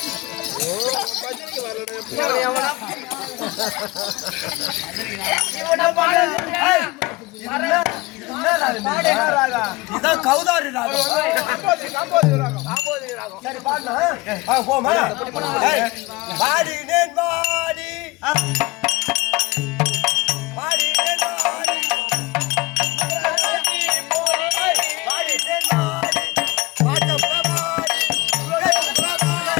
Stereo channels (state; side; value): quieter; right; 22.3 dB